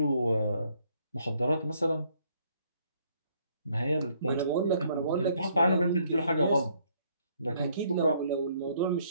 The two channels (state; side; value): inverted; both; correlation -0.67